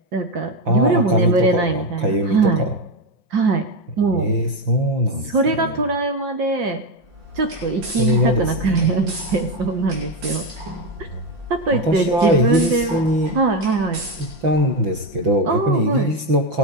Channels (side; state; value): left; late; 5.7 ms